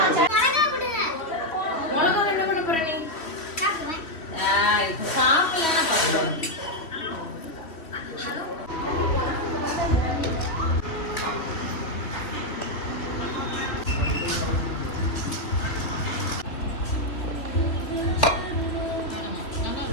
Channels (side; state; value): right; late; 3.3 ms